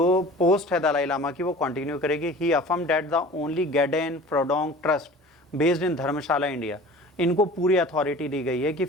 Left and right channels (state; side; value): normal; both; correlation 0.42